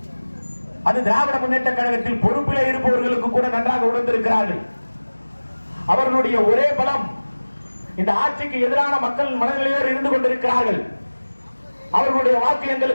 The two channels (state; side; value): inverted; both; correlation -1.00